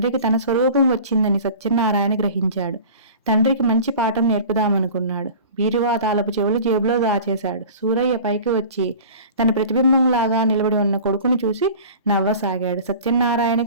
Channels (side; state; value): both; inverted; correlation -0.40